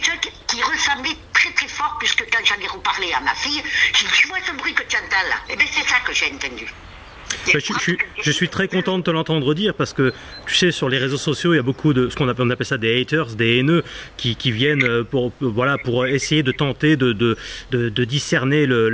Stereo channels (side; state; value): both; identical; correlation 1.00